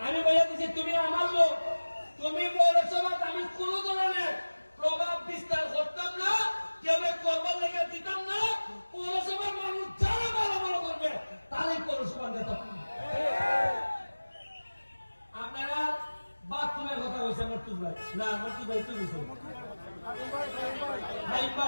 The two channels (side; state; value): both; inverted; correlation -1.00